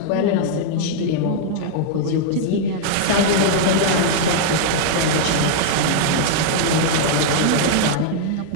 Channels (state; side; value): different; both; correlation -0.01